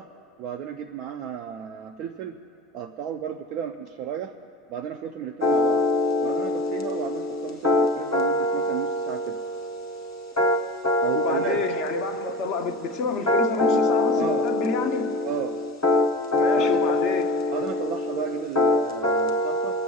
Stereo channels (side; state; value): both; normal; correlation 0.31